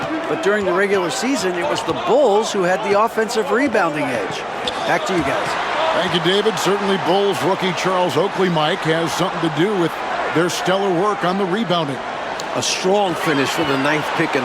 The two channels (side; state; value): both; identical; correlation 1.00